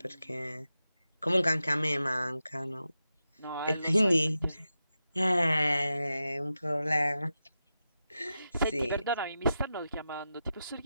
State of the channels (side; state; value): both; inverted; correlation -0.90